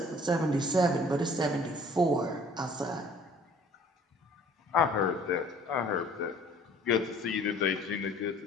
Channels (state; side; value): normal; both; correlation 0.53